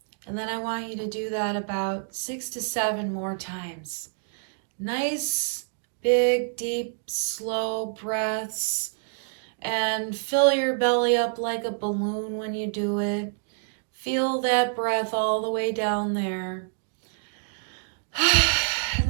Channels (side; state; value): left; silent; digital silence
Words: And then I want you to do that about 6 to 7 more times. Nice, big, deep, slow breaths. And fill your belly up like a balloon when you do it. Feel that breath all the way down there.